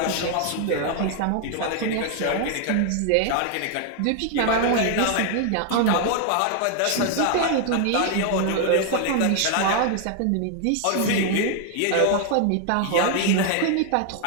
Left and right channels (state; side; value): different; both; correlation 0.00